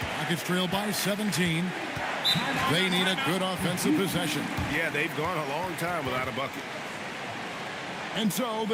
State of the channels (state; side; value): identical; both; correlation 1.00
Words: Rockets trail by 17. They need a good offensive possession. Yeah, they've gone a long time without a bucket. And so the